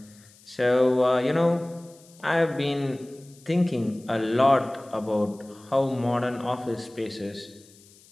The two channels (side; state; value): left; noise; hiss, 26 dB below the sound